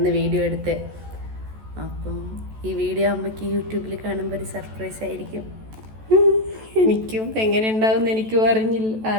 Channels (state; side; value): late; left; 14 ms